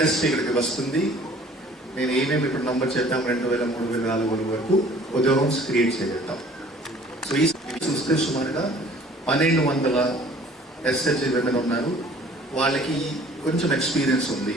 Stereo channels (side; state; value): both; normal; correlation 0.52